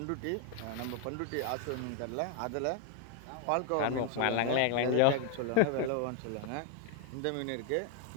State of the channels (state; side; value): different; both; correlation 0.00